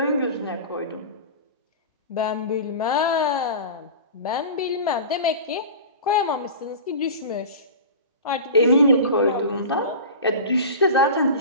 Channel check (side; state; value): both; inverted; correlation -0.33